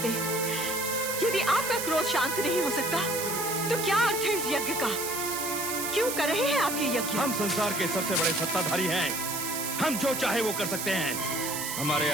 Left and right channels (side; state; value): right; noise; hiss, 3 dB below the sound